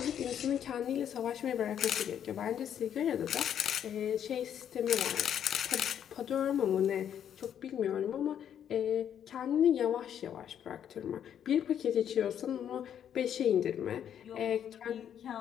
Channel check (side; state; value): right; quieter; 9.3 dB